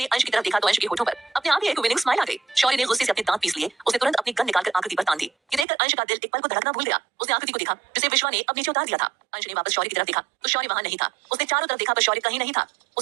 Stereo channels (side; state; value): left; drops out; at 5.7 s